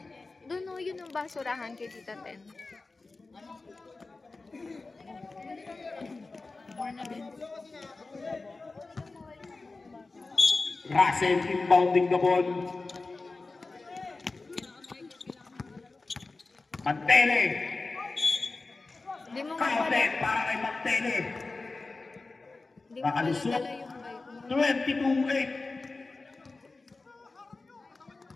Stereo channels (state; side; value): quieter; right; 3.6 dB